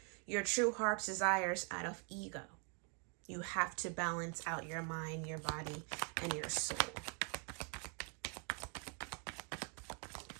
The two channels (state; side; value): quieter; left; 38.5 dB